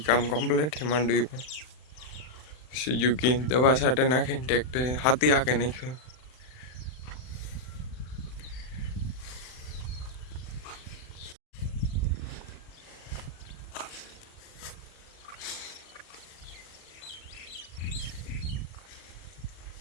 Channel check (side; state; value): right; late; 39 ms